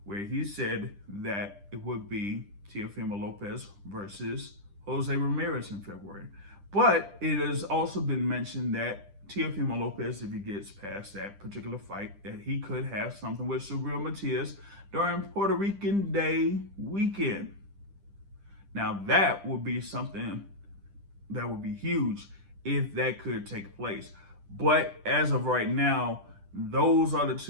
where he said that it would be Teofimo Lopez versus Jose Ramirez in February. But it has also been mentioned that Teofimo Lopez, if he gets past that particular fight, that he could have something with Subriel Matias during Puerto Rican Day weekend. Now that would be something that would be huge if that could take place. But as of right now, those are the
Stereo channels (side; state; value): left; late; 10 ms